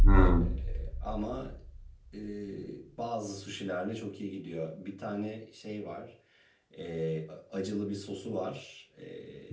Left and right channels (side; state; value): both; identical; correlation 1.00